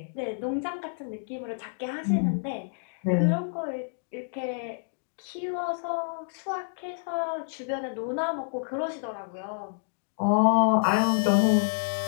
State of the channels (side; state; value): right; silent; digital silence